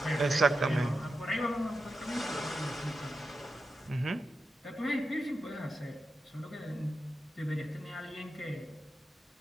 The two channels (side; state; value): both; normal; correlation 0.90